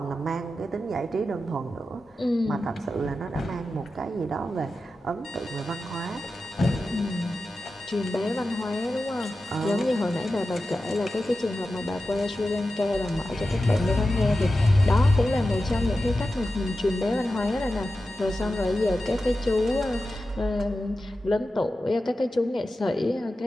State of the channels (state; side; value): normal; both; correlation 0.92